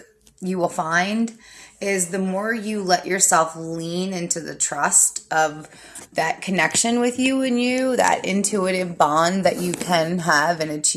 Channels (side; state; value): both; identical; correlation 1.00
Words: you will find is the more you let yourself lean into the trust of that connection with you and you, that intuitive bond that you can have and